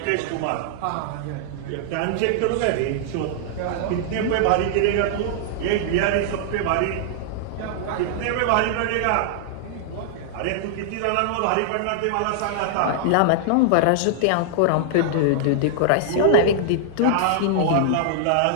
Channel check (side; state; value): both; different; correlation -0.01